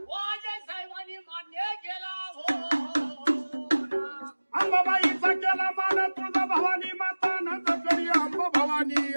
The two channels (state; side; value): inverted; both; correlation -1.00